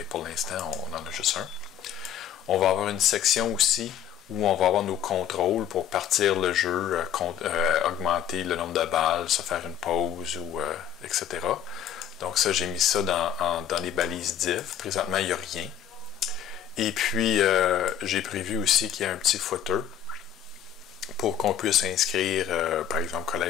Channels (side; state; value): right; quieter; 9.6 dB